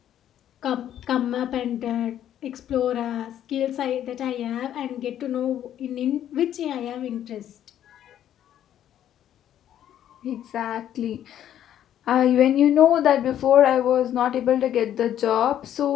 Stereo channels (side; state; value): right; quieter; 10.9 dB